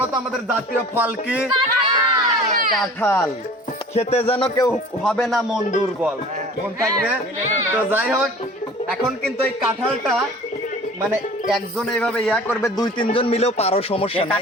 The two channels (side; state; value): both; normal; correlation 0.44